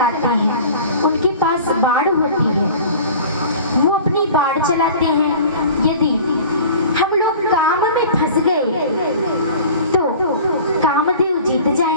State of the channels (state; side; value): inverted; both; correlation -0.42